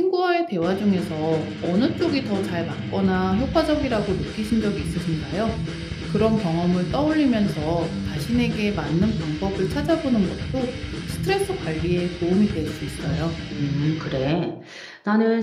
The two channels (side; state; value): both; identical; correlation 1.00